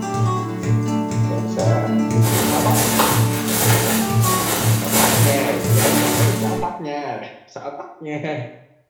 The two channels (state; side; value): identical; both; correlation 1.00